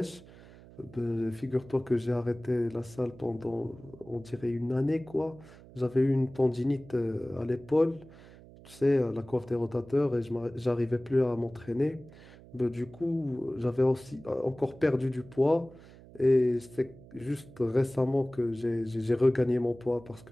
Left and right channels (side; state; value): right; noise; hum, 21 dB below the sound